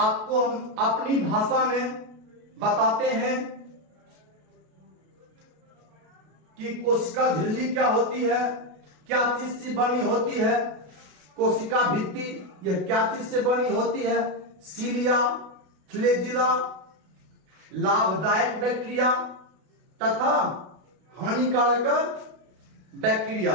हम अपनी भाषा में बताते हैं कि कोशिका झिल्ली क्या होती है, क्या चीज से बनी होती है। कोशिका भित्ति यह क्या चीज से बनी होती है, सीलिया, फ्लैजिला, लाभदायक बैक्टीरिया तथा हानिकारक बैक्टीरिया।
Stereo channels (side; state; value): left; late; 32 ms